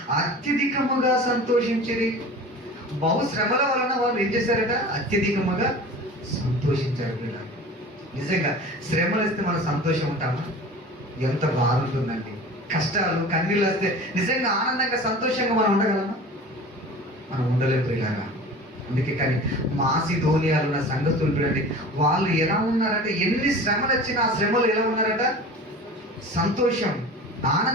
అత్యధికముగా సంతోషించిరి. బహుశ్రమల వలన వాళ్ళు ఏం చేశారట, అత్యధికముగా సంతోషించారు. వీళ్ళ నిజంగా శ్రమలు వస్తే మనం సంతోషం ఉంటామా? ఎంత బాగుంటుందండి. కష్టాలు కన్నీళ్ళు వస్తే నిజంగా ఆనందంగా సంతోషంగా మనం ఉండగలమా? మనం ఉండలేదు ఇలాగా. అందుకే కానీ మాసిదోనియాలో ఉన్న సంఘస్థులు చూడండి, వాళ్ళు ఎలా ఉన్నారంటే ఎన్ని శ్రమలు వచ్చినా ఆ శ్రమలు ఎలా ఉన్నారట, సంతోషం,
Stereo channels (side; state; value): both; normal; correlation 0.38